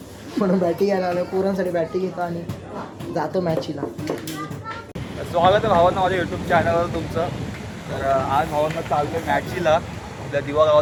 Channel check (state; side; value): identical; both; correlation 1.00